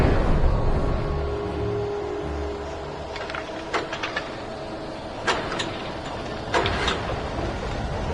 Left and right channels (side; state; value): both; identical; correlation 1.00